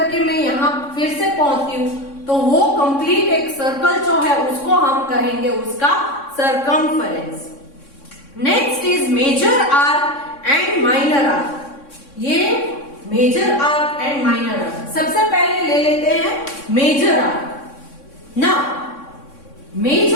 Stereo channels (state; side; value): late; right; 3.6 ms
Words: मैं यहां फिर से पहुंचती हूं तो वो कंप्लीट एक सर्कल जो है उसको हम कहेंगे उसका circumference. Next is major arc and minor arc. ये major arc and minor arc. सबसे पहले ले लेते हैं मेजर आर्क। ना